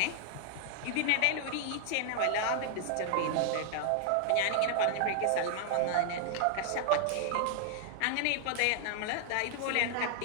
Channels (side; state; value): both; different; correlation 0.00